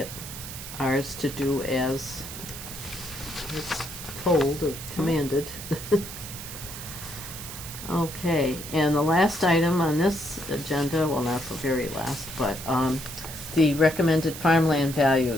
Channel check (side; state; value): right; noise; hiss, 10 dB below the sound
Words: Ours to do as it's told or commanded. Okay, and the last item on this agenda, well, not the very last, but the recommended farmland